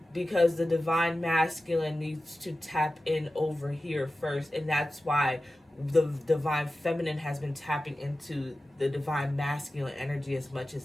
Because the divine masculine needs to tap in over here first. And that's why the divine feminine has been tapping into the divine masculine energy as much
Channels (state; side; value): normal; both; correlation 0.94